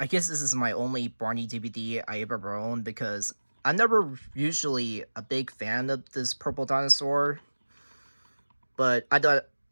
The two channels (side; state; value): both; inverted; correlation -1.00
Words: guess this is my only Barney DVD I ever owned because I'm never usually a big fan of this purple dinosaur, but I thought